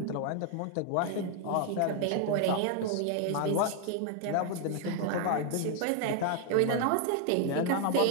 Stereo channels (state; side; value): different; both; correlation 0.00